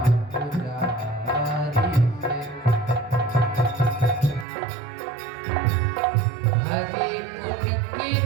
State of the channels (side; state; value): left; drops out; at 4.5 s